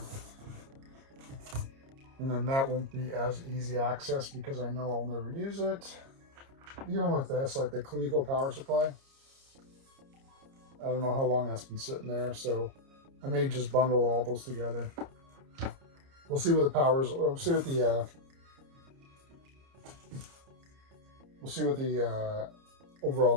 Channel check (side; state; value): left; late; 30 ms